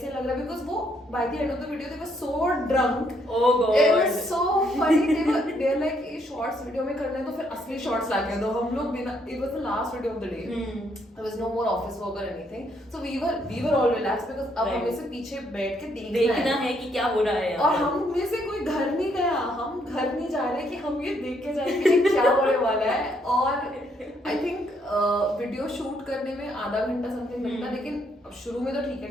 लग रहा है, बिकॉज वो by the end of the video they were so drunk. Oh god, it was so funny. They are like ये शॉर्ट्स वीडियो में करना है तो फिर असली शॉर्ट्स लाके दो. हम लोग बिना, it was the last video of the day, there was no more office work और anything, so we were all relax because अब हमें से पीछे बैठ के देखना है कि क्या हो रहा है, और हम में से कोई घर नहीं गया, हम घर नहीं जा रहे कि हम ये देख के जाएंगे कि क्या होने वाला है. और आई थिंक वीडियो शूट करने में आधा घंटा समथिंग लगता, लेकिन शुरू में तो ठीक है,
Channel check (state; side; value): normal; both; correlation 0.72